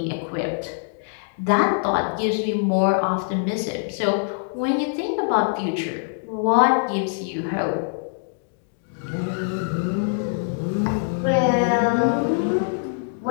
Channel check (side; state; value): right; silent; digital silence